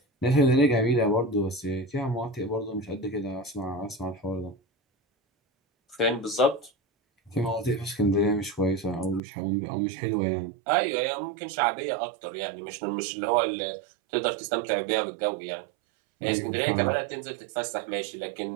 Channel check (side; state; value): left; drops out; at 9.2 s